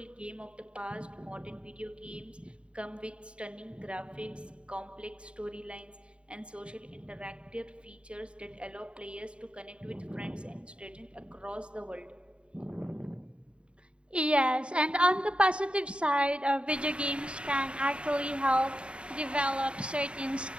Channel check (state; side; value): late; left; 0.056 ms